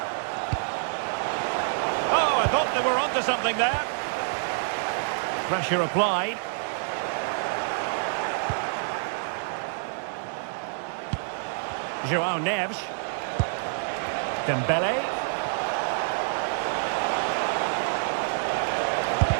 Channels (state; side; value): silent; left; digital silence